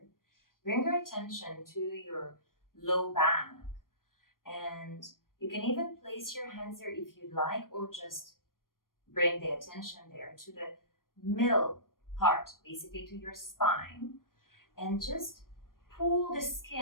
bring your attention to your low back. And you can even place your hands there if you'd like, or just bring the attention there to the middle part, basically to your spine, and just pull the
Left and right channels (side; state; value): right; late; 0.91 ms